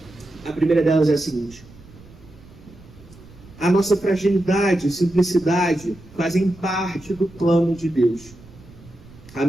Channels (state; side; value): noise; right; rumble, 22 dB below the sound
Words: A primeira delas é a seguinte: a nossa fragilidade e simplicidade fazem parte do plano de Deus. A